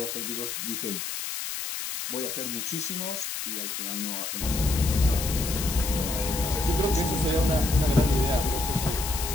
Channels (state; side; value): noise; left; hiss, 5 dB below the sound